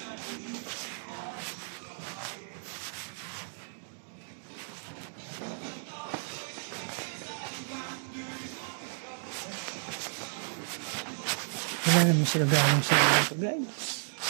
Wala naman sila galing sa mga ito, guys.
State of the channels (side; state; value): left; silent; digital silence